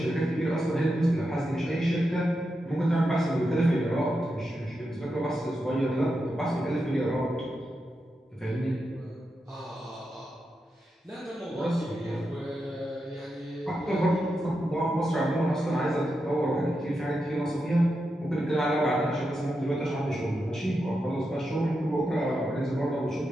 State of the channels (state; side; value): normal; both; correlation 0.87